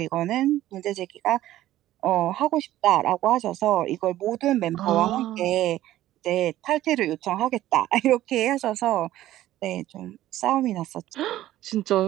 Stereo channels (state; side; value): quieter; left; 14.3 dB